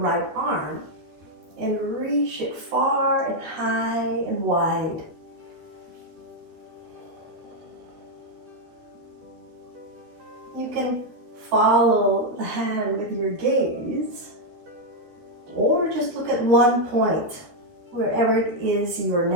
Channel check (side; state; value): left; late; 12 ms